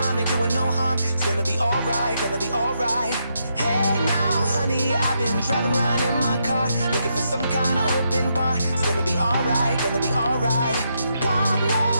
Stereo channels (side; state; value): both; inverted; correlation -0.80